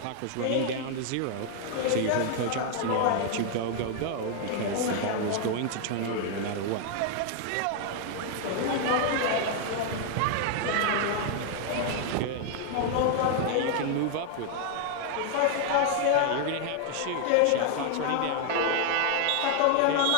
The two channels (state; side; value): different; both; correlation 0.00